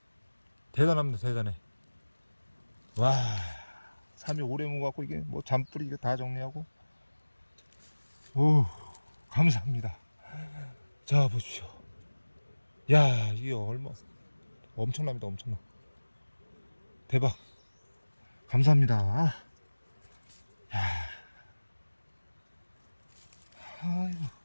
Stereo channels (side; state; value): both; inverted; correlation -1.00